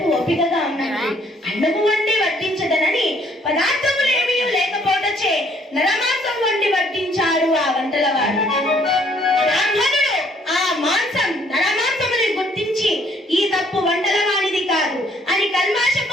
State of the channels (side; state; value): both; normal; correlation 0.63